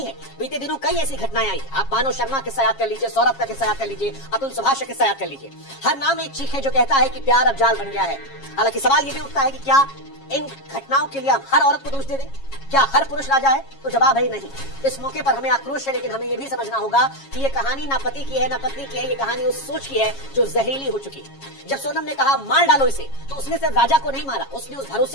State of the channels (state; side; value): late; right; 7.3 ms